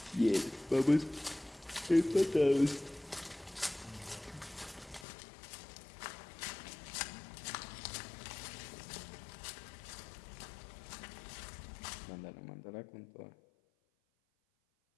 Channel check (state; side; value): drops out; right; at 5.1 s